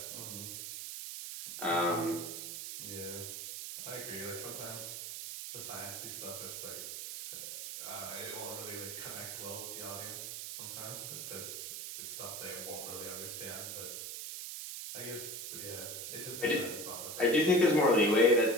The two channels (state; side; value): noise; right; hiss, 6 dB below the sound